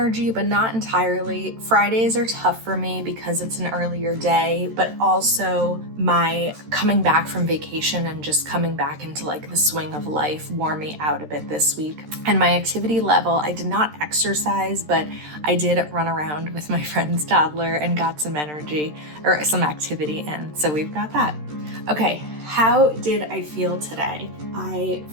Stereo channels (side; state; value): left; late; 13 ms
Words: but not entirely. Fridays are tough for me because it's an earlier day, but also my coming back from vacation and just coming back into like the swing of life wore me out a bit this week. And my activity level, I did not exercise, but I did run around with my friend's toddler and got some energy or some activity in. So we've got that. Okay, how did I feel today? I